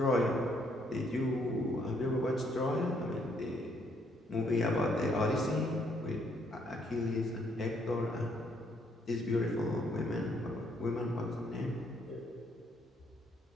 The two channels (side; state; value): both; normal; correlation 0.70